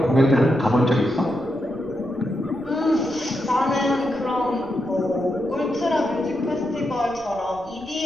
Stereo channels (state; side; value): noise; left; rumble, 25 dB below the sound